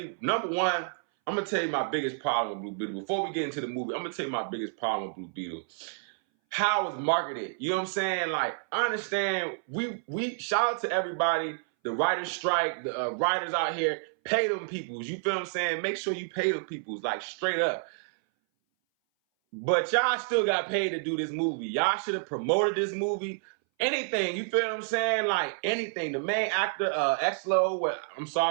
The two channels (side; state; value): left; silent; 58 dB below the other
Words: number one, I'm going to tell you my biggest problem with Blue Beetle. Before we get into the movie, I'm going to tell you my biggest problem with Blue Beetle. How it was marketed. You know what I'm saying? Like, I understand, we shout out to everybody, the writer's strike, the writers out here, pay them peoples. You feel what I'm saying? Make sure you pay them peoples, like, straight up. But y'all still got paid to do this movie. Y'all should have promoted this movie. Anything, you feel what I'm saying? Like anything. The main actor, Exlo, well, I'm